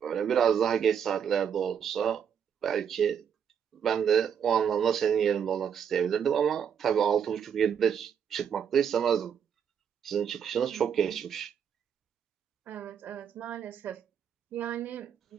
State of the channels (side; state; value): left; quieter; 7.9 dB